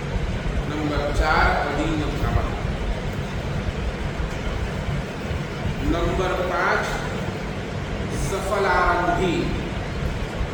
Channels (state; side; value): identical; both; correlation 1.00